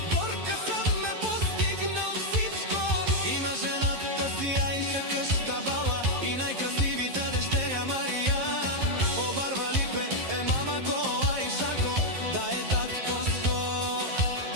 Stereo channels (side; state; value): left; late; 11 ms